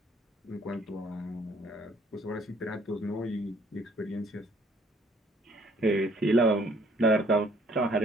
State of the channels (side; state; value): both; normal; correlation 0.61